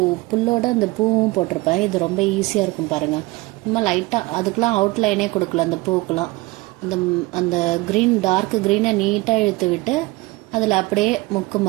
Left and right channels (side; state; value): left; quieter; 22.0 dB